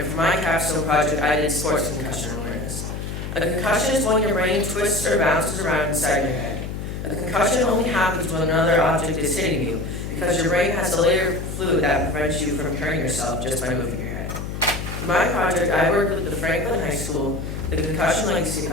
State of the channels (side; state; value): left; noise; hum, 6 dB below the sound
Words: for my capstone project, I did sports concussion awareness. A concussion is when your brain twists or bounces around inside your head. A concussion only happens when another object is hitting you, because your brain has a layer of fluid that prevents you from hurting yourself just by moving your head. For my project, I worked with the Franklin High School, the Concussion Legacy